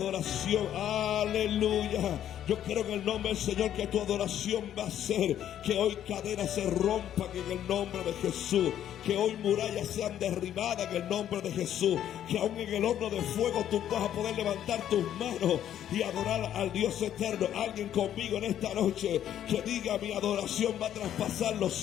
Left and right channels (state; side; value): quieter; right; 10.8 dB